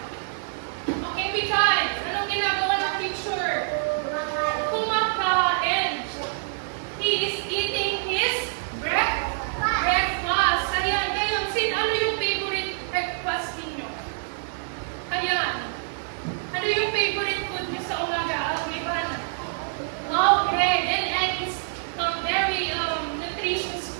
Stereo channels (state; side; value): silent; left; digital silence